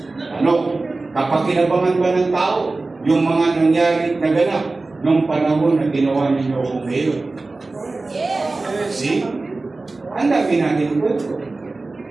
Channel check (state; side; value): quieter; left; 3.4 dB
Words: Ano? Kapakinabangan ba ng tao yung mga nangyari naganap nung panahon na ginawa ninyo kung ngayon? See? Ang dami natin kwento.